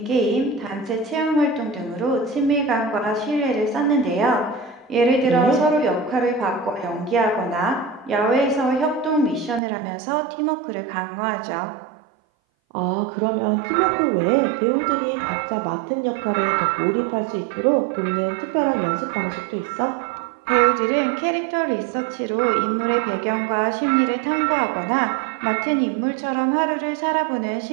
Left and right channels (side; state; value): left; drops out; at 9.6 s